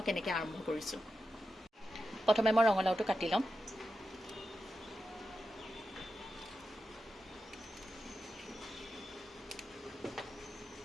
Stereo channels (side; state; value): both; normal; correlation 0.90